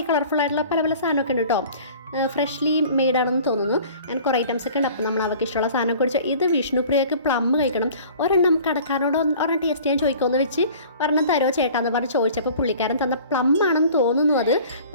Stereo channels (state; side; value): inverted; both; correlation -0.47